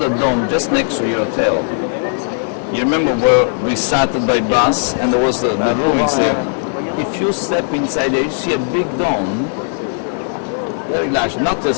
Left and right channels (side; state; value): right; silent; 64 dB below the other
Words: dome just next to your hotel. You remember where we started by bus and there was the ruins there. If you step inside there, you see a big dome, very large, not